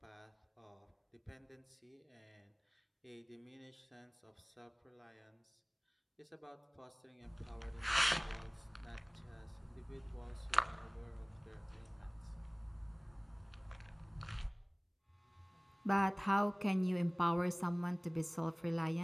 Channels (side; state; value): both; identical; correlation 1.00